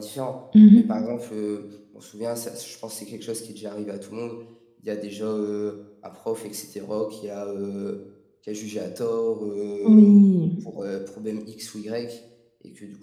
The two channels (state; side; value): identical; both; correlation 1.00